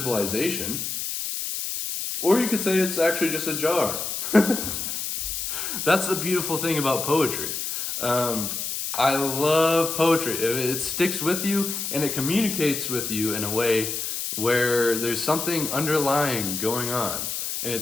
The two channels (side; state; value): left; noise; hiss, 3 dB below the sound